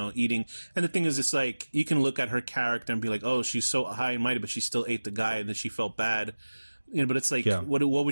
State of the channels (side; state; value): both; inverted; correlation -1.00